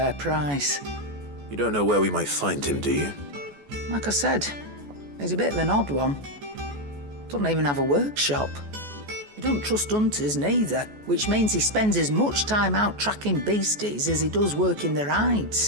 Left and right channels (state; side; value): late; left; 14 ms